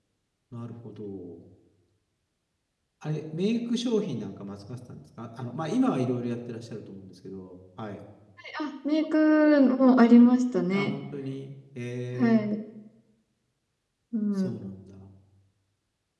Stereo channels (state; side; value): identical; both; correlation 1.00